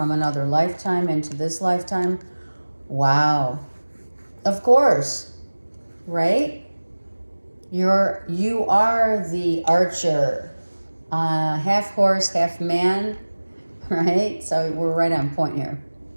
another lifetime into this lifetime. Wow. Of course, right? You are the archer, half horse, half man, right? So we're right on point here.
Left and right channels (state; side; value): inverted; both; correlation -1.00